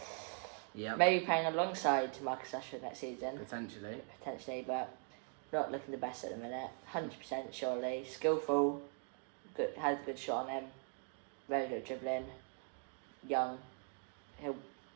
Yeah. Maybe playing alongside Marcus Rashford next season. Potentially, but not looking the best at the minute. 100% surely. Skillful. Good, has a good shot on him. Very good dribbling. Young. He'll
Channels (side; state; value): left; quieter; 37.9 dB